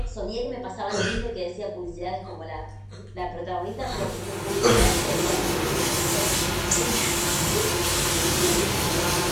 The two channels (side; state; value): both; identical; correlation 1.00